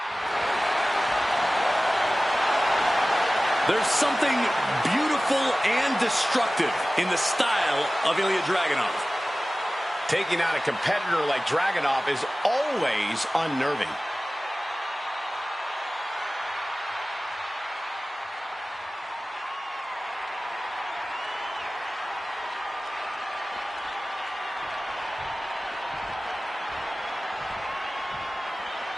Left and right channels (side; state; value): both; normal; correlation 0.97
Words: There's something beautiful and destructive in the style of Ilya Dragunov. Taking on a competitor like Dragunov is always unnerving.